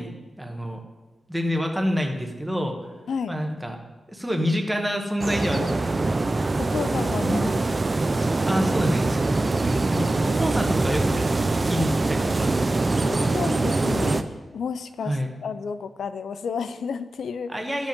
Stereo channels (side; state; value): both; normal; correlation 0.94